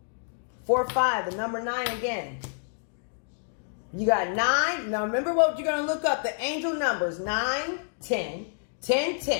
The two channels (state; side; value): silent; right; digital silence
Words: 4-5, the number 9 again. You got 9. Now remember what you're going to look up. The angel numbers 9, 10, 10,